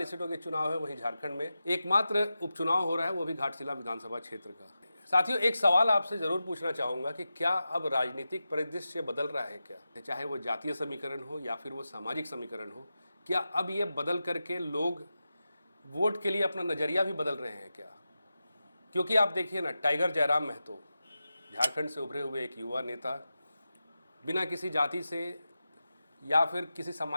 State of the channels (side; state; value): both; inverted; correlation -0.92